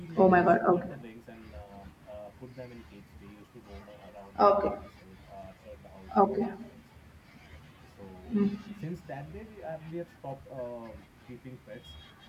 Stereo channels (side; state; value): both; identical; correlation 1.00